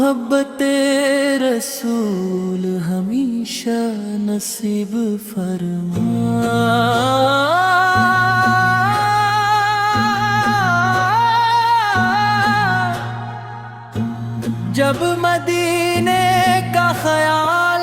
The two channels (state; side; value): identical; both; correlation 1.00